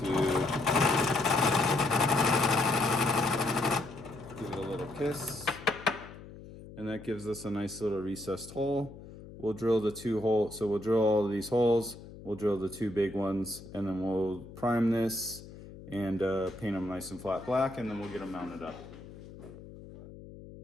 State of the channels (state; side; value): noise; left; hum, 16 dB below the sound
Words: give it a little kiss. And that gives us a nice little recessed hole. We'll drill the 2 holes. So we'll drill all of these holes. We'll drill the 2 big ones, and then we'll prime this and paint them nice and flat black, and then we'll get them mounted up.